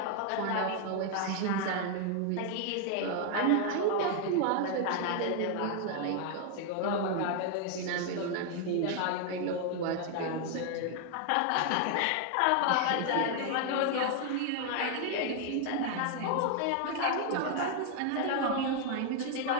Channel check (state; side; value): different; both; correlation 0.00